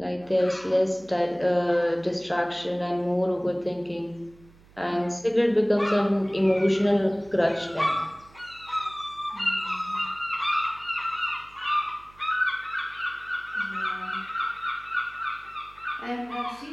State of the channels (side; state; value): right; noise; hum, 26 dB below the sound